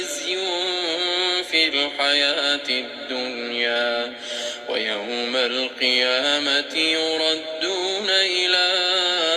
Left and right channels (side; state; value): both; identical; correlation 1.00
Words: في الحياة الدنيا ويوم القيامة يردون إلى